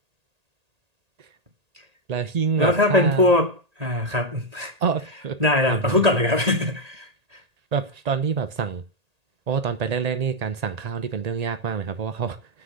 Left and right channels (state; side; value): late; left; 1.8 ms